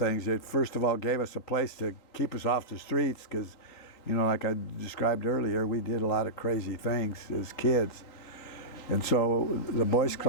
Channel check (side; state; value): right; late; 3.9 ms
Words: It first of all gave us a place to keep us off the streets because, like I described earlier, we did a lot of crazy things as kids. And so the Boys